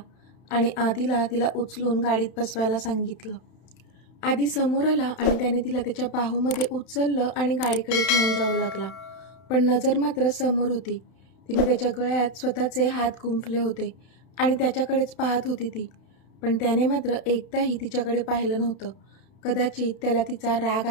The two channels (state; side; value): late; right; 31 ms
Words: आणि आधीला तिला उचलून गाडीत बसवायला सांगितलं. आधी समोर आला आणि त्याने तिला त्याच्या बाहूमध्ये उचललं आणि गाडीकडे घेऊन जाऊ लागला. पण नजर मात्र समोर होती. तिने त्याच्या गळ्यात स्वतःचे हात गुंफले होते आणि त्याच्याकडेच पाहत होती ती. पण त्याने मात्र एकदाही तिच्याकडे पाहिलं नव्हतं. कदाचित त्याला तिचा राग